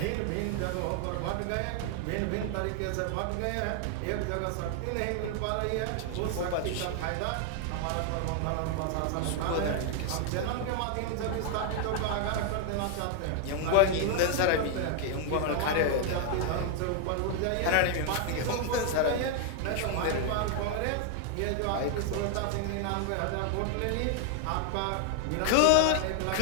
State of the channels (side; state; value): both; different; correlation 0.00